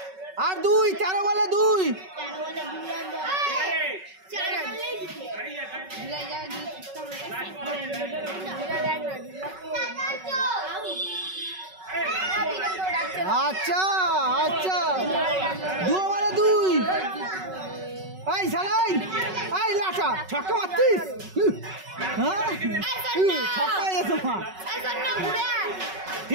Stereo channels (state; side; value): late; left; 5.3 ms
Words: আর 2 13 বলে 2। আচ্ছা 2 বলে 2। এই সালাই এই লাটা ছক্কা মারছিস। হ্যাঁ ছক্কা এসো মা।